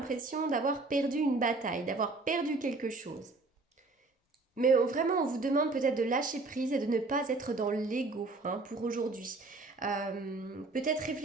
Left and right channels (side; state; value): left; quieter; 3.4 dB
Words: d'avoir perdu une bataille, d'avoir perdu quelque chose. Mais vraiment, on vous demande peut-être de lâcher prise et de ne pas être dans l'ego pour aujourd'hui. Peut-être